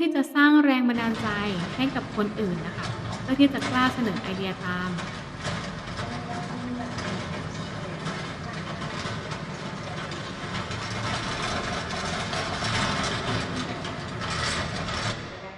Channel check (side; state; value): both; identical; correlation 1.00